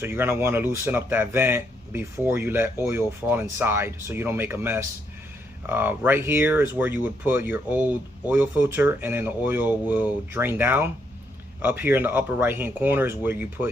you're gonna want to loosen up that vent before you let oil fall inside, so you don't make a mess. Right here is where you would put your old oil filter, and then the oil will drain down. Up here in the upper right hand corner is where you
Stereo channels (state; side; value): normal; both; correlation 0.76